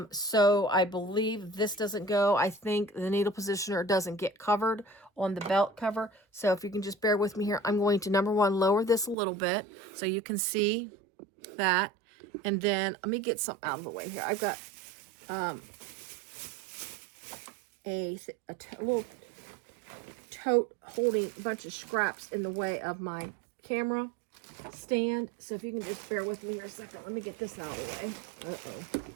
So I believe this doesn't go. I think the needle positioner doesn't get covered on the belt cover. So if you can just bear with me here, I'm going to, number one, lower this a little bit so you can see that. And then let me get some out of the way here. I've got a little tote holding a bunch of scraps in the way of my camera stand. So if you can just bear with me here a second, let me get this out of the way. Uh-oh.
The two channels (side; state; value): left; drops out; at 9.2 s